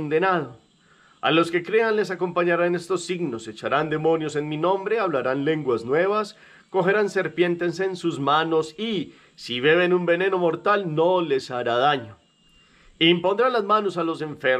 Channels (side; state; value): both; identical; correlation 1.00